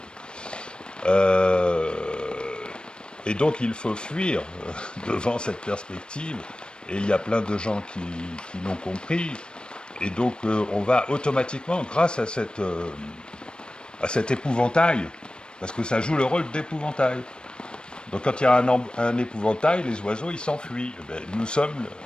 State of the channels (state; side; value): late; right; 0.053 ms